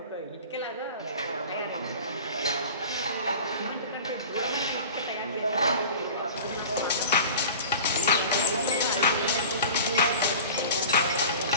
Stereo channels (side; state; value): both; inverted; correlation -0.38